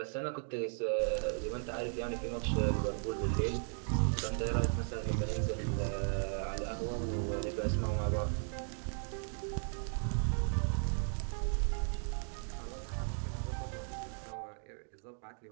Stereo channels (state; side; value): silent; left; 54 dB below the other